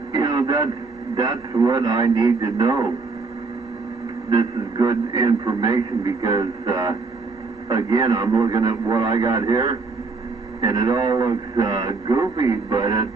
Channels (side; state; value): left; quieter; 4.1 dB